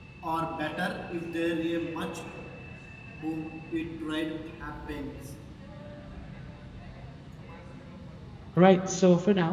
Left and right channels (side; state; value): both; identical; correlation 1.00